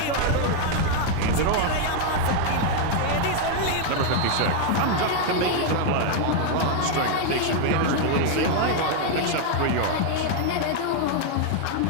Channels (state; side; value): different; both; correlation 0.00